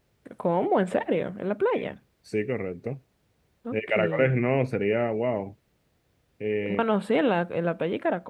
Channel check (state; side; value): identical; both; correlation 1.00